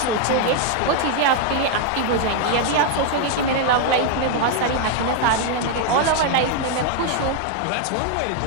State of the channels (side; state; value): both; different; correlation 0.00